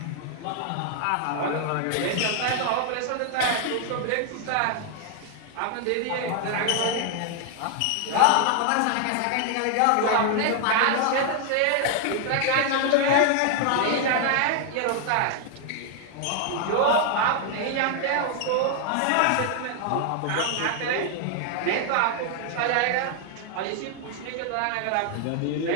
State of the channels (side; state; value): both; different; correlation 0.00